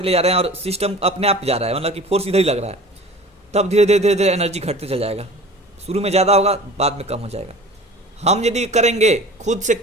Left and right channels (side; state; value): both; normal; correlation 0.41